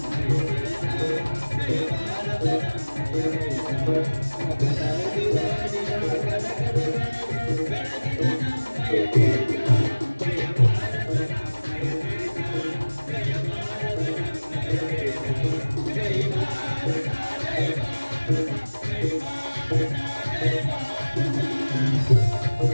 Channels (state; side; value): inverted; both; correlation -1.00